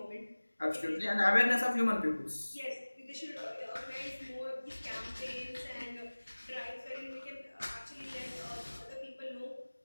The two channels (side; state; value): both; inverted; correlation -1.00